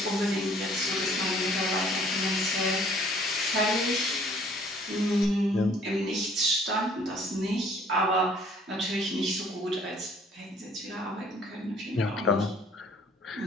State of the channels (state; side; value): normal; both; correlation 0.57